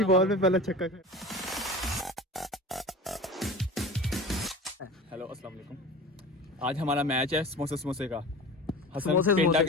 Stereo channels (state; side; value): normal; both; correlation 0.34